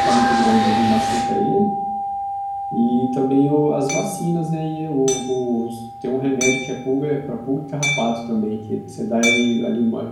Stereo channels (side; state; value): both; identical; correlation 1.00